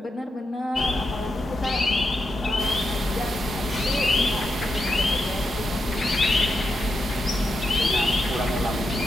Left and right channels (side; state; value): both; normal; correlation 0.86